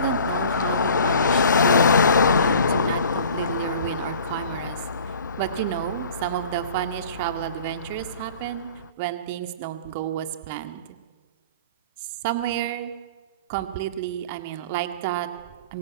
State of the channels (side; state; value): both; inverted; correlation -0.44